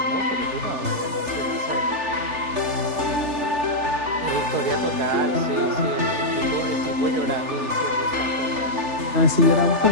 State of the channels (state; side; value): late; left; 3.4 ms